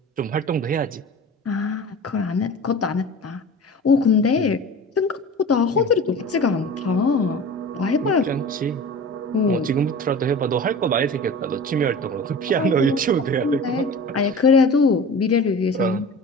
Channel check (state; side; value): normal; both; correlation 0.37